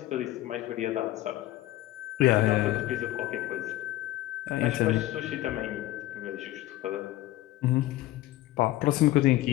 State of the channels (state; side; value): quieter; right; 15.8 dB